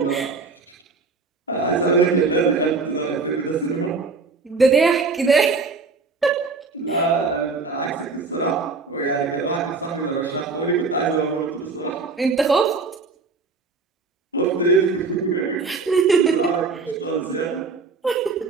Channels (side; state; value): left; quieter; 4.3 dB